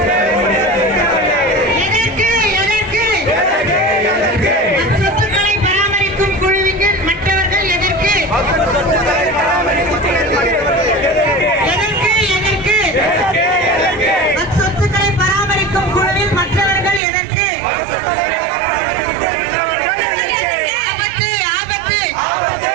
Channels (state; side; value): drops out; left; at 17.0 s